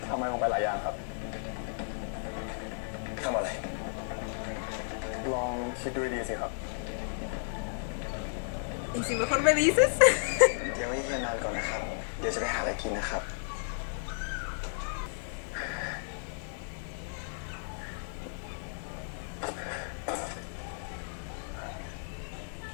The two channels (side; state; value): right; silent; digital silence